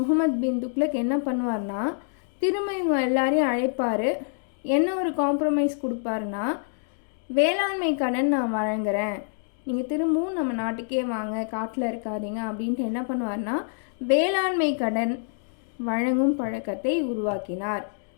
பின் துக்ளக் என்ன பண்ணுவார்னா திரும்ப இவங்க எல்லாரையும் அழைப்பார். என்ன ஒரு காம்ப்ரமைஸ் கொடுப்பாருன்னா, வேளாண்மை கடன் நான் வழங்குறேன், நீங்கள் திரும்பவும் நம்ம நாட்டுக்கே வாங்க, காட்டில் இருக்காதீங்க அப்படின்ட்டு என்ன பண்ணுவார்னா வேளாண்மை கடன் வழங்கும் பழக்கத்தை உருவாக்கினார்.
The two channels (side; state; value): right; silent; digital silence